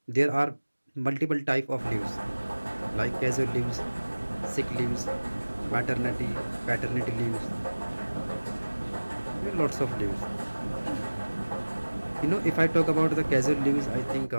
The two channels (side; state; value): both; inverted; correlation -1.00